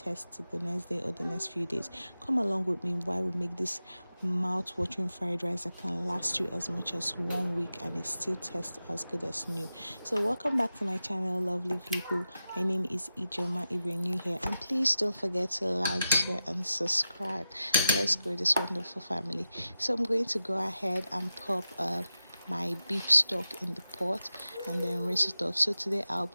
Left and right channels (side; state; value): both; inverted; correlation -0.91